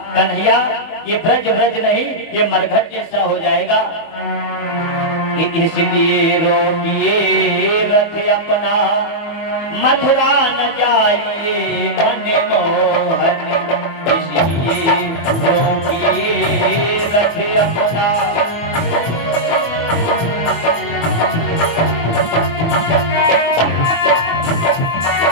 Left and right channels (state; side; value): late; right; 24 ms